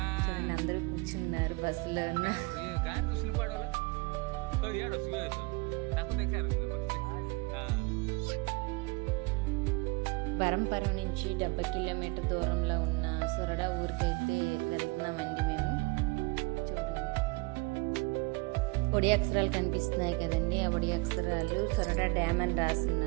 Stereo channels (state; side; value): quieter; left; 26.4 dB